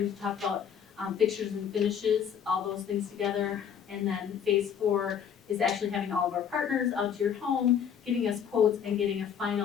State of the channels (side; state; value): right; quieter; 8.0 dB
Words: to talk about fixtures and finishes, all those things together. And then phase 4 is actually having all of our partners out to your home, giving us quotes and getting a